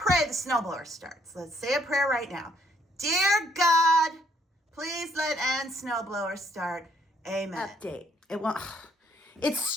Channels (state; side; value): normal; both; correlation 0.68